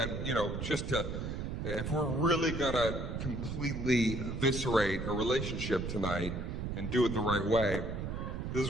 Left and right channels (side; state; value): right; noise; rumble, 4 dB below the sound